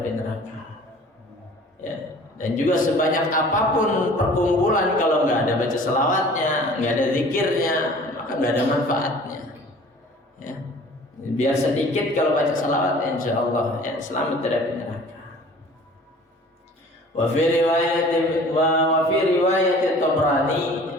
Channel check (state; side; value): normal; both; correlation 0.48